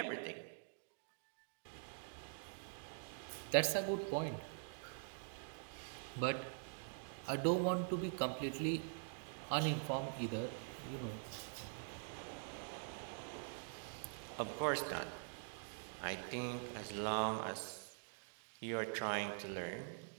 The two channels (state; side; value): silent; left; digital silence